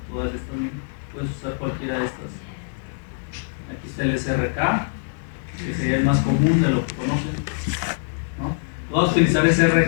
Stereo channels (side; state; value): right; silent; digital silence